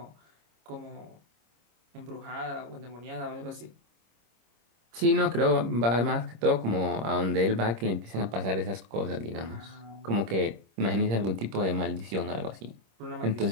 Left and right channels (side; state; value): left; late; 26 ms